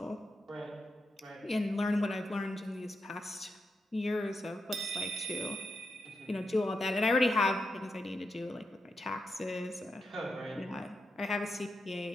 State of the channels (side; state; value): both; normal; correlation 0.86